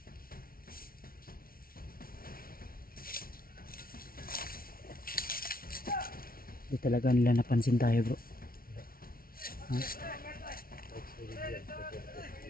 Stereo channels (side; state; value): right; late; 0.43 ms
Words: Di talaga nila napansin tayo bro. Ha? Balot